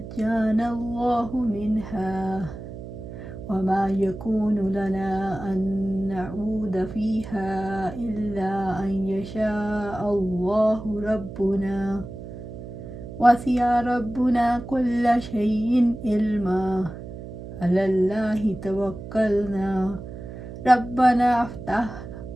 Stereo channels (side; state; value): right; noise; hum, 11 dB below the sound